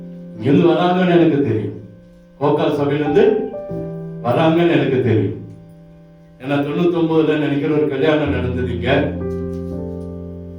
இங்கிருந்து வராங்கன்னு எனக்கு தெரியும். கோக்கால் சபையிலிருந்து வராங்கன்னு எனக்கு தெரியும். ஏன்னா 99 நினைக்கிற ஒரு கல்யாணம் நடந்தது இங்க.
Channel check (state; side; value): identical; both; correlation 1.00